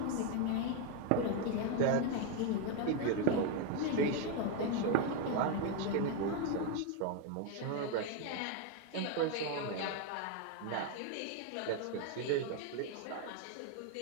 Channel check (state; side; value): different; both; correlation 0.01